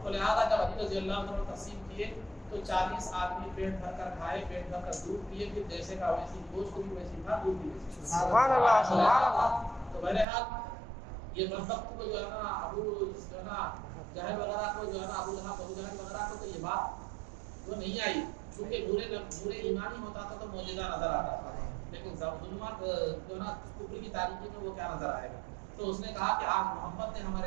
تو لہٰذا جب علی رضی اللہ عنہ تقسیم کیے تو 40 آدمی پیٹ بھر کر کھائے، پیٹ بھر کر دودھ پیے، پھر جیسے کا ویسی گوشت بھی ویسی تھا، دودھ بھی ویسی۔ سبحان اللہ سبحان اللہ۔ تو بہرحال یہ بدبخت کو جو ہے نا ابو جو ہے نا جہل وغیرہ کو جو ہے نا ابو جہل وغیرہ کو تو یہ بات وہ نہیں آئی، چونکہ برے ایمانی ہوتا تھا تو معجزہ نظر آتا تھا، لیکن ظلمات جو ہے نا کفر کی تاریکی میں وہ کیا نظر آئے گا؟ تو اس نے کہا کہ آج محمد نے ہمارے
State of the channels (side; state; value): left; drops out; at 10.2 s